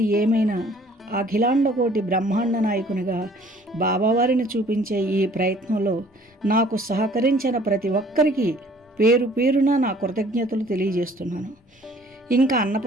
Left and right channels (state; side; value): normal; both; correlation 0.56